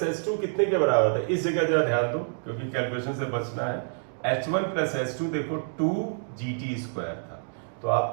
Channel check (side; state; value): left; silent; digital silence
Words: h2 कितने के बराबर था, इस जगह जरा ध्यान दो क्योंकि कैलकुलेशन से बचना है, h1 प्लस h2 देखो 2 gt स्क्वायर था, तो